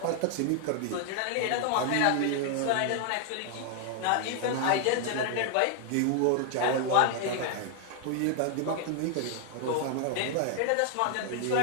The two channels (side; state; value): both; different; correlation 0.00